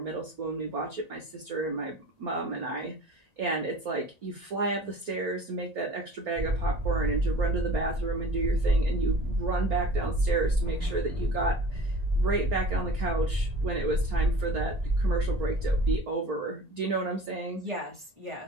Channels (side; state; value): left; late; 1.8 ms